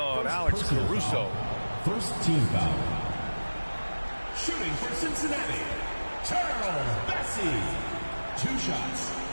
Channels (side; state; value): both; inverted; correlation -1.00